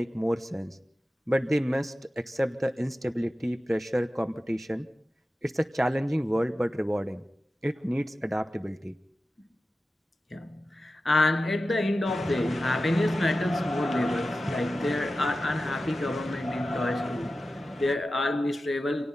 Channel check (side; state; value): both; normal; correlation 0.94